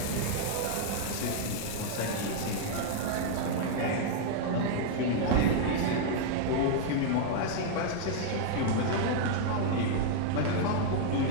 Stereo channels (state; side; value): different; both; correlation -0.01